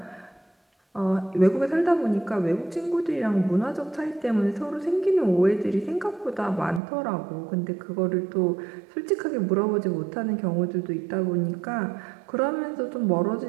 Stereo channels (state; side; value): drops out; left; at 6.8 s